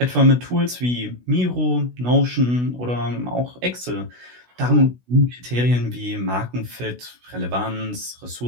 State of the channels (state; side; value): late; left; 16 ms